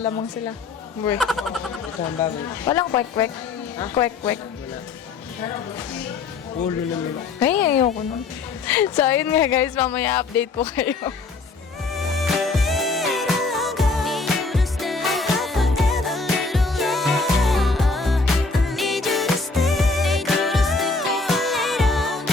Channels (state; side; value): quieter; right; 4.1 dB